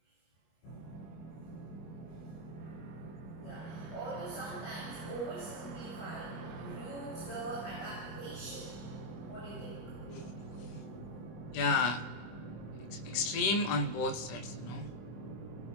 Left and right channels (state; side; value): late; right; 25 ms